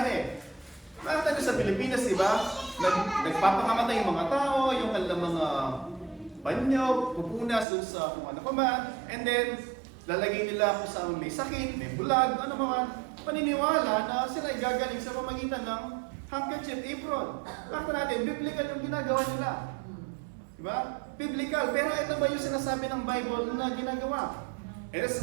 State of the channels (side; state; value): left; drops out; at 7.7 s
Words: Nakita nyo sa Pilipinas, di ba? Nagpapakamatay yung mga tao, yung mga banyo, pupunas dun sa kung ano pa man, and then lalagay nila kung saan may sakit, may bulag, ano man, paniniwala na sila ay gagaling sa pamagitan ng handkerchief, apron. Nakita natin, biblical yung ginagawa nila. Diba? Biblical. Pero ito ba yung sinasabi ng Bible na ginagawa? Eh,